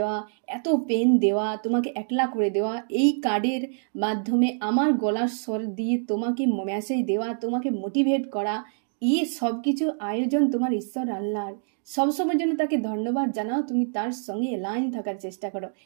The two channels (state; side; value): silent; left; digital silence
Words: এত পেন দেওয়া, তোমাকে একলা করে দেওয়া, এই কার্ডের মাধ্যমে আমার গলার স্বর দিয়ে তোমাকে মেসেজ দেওয়া, তোমাকে মোটিভেট করা, এই সব কিছু আয়োজন তোমার ঈশ্বর আল্লাহর। সবসময়ের জন্য তাকে ধন্যবাদ জানাও, তুমি তার সঙ্গে লাইন থাকার চেষ্টা করো,